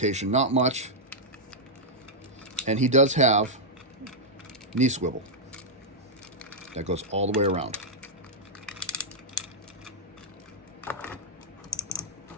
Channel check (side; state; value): both; normal; correlation -0.06